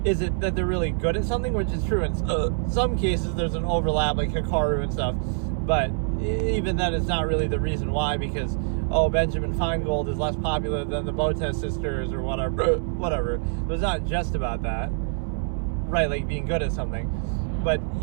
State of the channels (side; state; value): left; silent; 62 dB below the other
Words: is it that they're really good at something, which is true in some cases. There's an overlap, like Hikaru and stuff, but even then it's not really the reason why, because, oh, Benjamin Feingold is less popular than the Botez sisters or whatever. But it's not just about that, right? Like being good at something. But